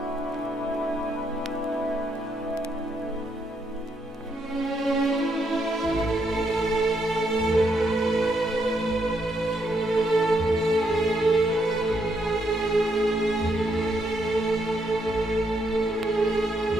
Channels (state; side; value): normal; both; correlation 0.76